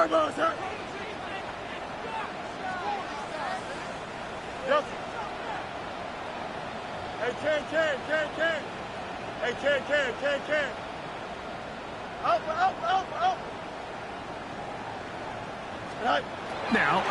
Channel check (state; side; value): identical; both; correlation 1.00